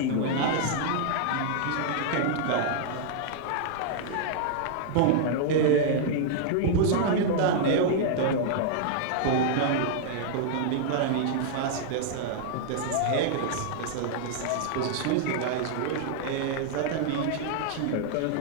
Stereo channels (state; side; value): different; both; correlation -0.01